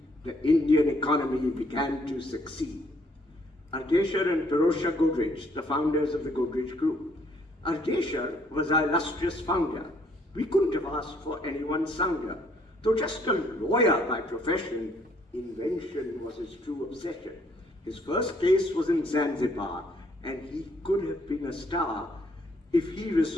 The Indian economy began to succeed. Ardeshir and Pirosha Godrej, the founders of the Godrej Group. Ardeshir was our illustrious founder. We couldn't have asked for anyone sounder. Though just a lawyer by profession, invention was his true obsession. His first case was in Zanzibar, and he could have been a star if he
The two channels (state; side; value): normal; both; correlation 0.66